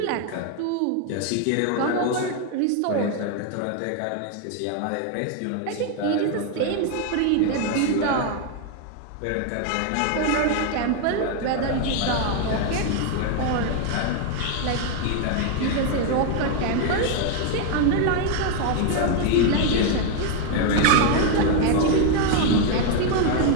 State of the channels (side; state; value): both; different; correlation 0.01